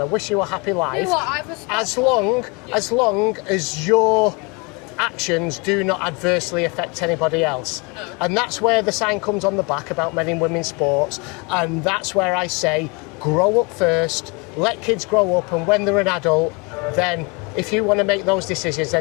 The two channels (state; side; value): quieter; right; 29.7 dB